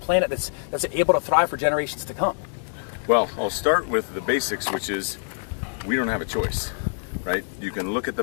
that's able to thrive for generations to come? Well, I'll start with the basics, which is we don't have a choice. Right? You can look at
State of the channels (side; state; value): right; silent; digital silence